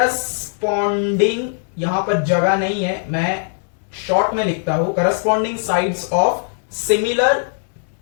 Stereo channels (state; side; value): silent; right; digital silence